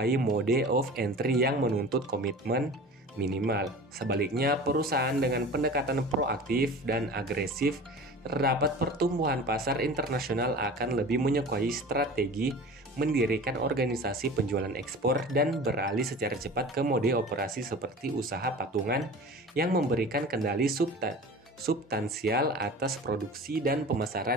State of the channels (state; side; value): normal; both; correlation 0.38